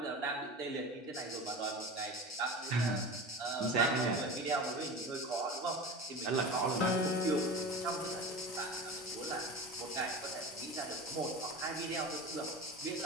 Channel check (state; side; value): normal; both; correlation 0.30